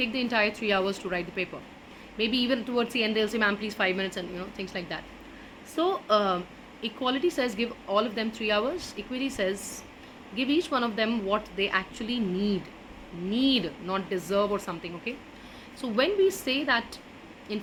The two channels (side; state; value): both; identical; correlation 1.00